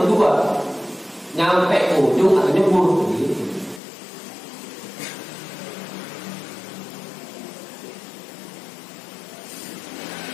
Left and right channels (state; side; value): drops out; right; at 3.8 s